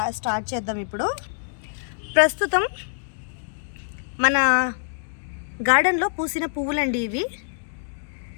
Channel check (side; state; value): right; silent; digital silence